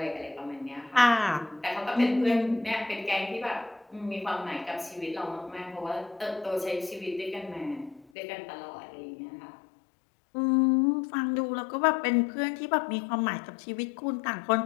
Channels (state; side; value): drops out; right; at 8.1 s